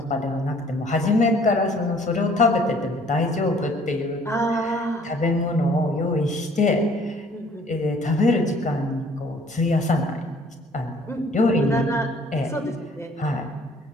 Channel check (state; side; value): normal; both; correlation 0.57